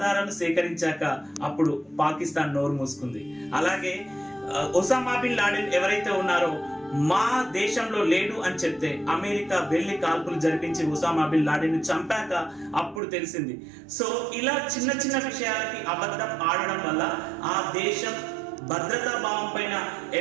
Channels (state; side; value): drops out; left; at 13.0 s